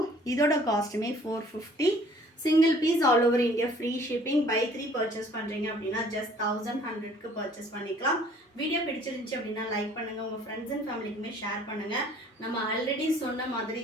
இதோட காஸ்ட்டுமே 450. Single piece all over India free shipping. Buy 3 purchase பண்ணுறீங்க அப்படின்னா ஜஸ்ட் 1100க்கு பர்ச்சேஸ் பண்ணிக்கலாம். வீடியோ பிடிச்சிருந்துச்சு அப்படின்னா லைக் பண்ணுங்கள், உங்கள் ஃப்ரெண்ட்ஸ் அண்ட் ஃபேமிலிக்குமே ஷேர் பண்ணுங்கள். நம்ம ஆல்ரெடி சொன்ன மாதிரி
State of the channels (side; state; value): both; normal; correlation 0.56